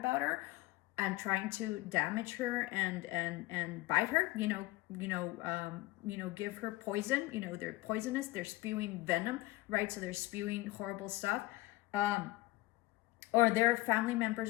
her and trying to damage her and bite her, give her poison. They're poisonous. They're spewing venom, right? So they're spewing horrible stuff. Or they're family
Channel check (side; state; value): right; quieter; 19.3 dB